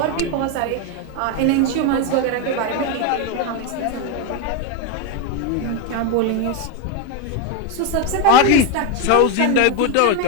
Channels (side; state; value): both; different; correlation 0.02